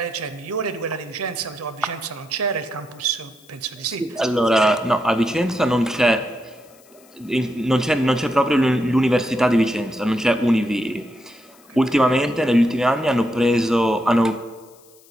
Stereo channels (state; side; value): noise; left; hiss, 28 dB below the sound